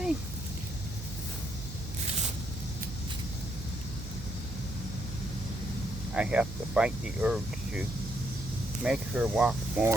I have to fight the urge to make her walk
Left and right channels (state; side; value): noise; right; hum, 9 dB below the sound